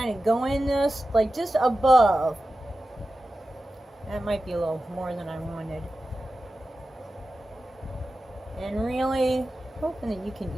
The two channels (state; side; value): normal; both; correlation 0.93